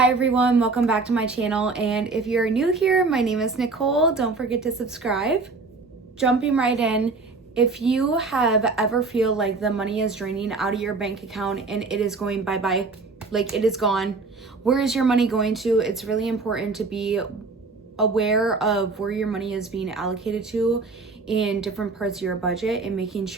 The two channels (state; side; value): quieter; left; 4.0 dB